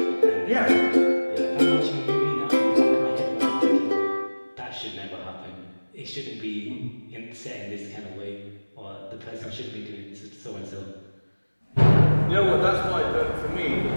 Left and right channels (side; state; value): both; inverted; correlation -1.00